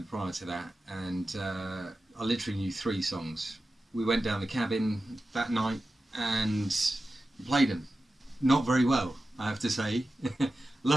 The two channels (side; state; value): both; normal; correlation 0.93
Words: prior to that, and I literally knew 3 songs. We went down the cabin that night and played them. Not very well, I have to say.